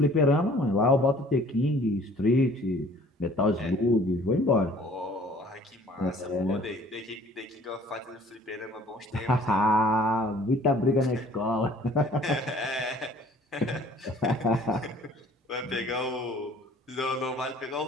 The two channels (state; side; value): normal; both; correlation 0.53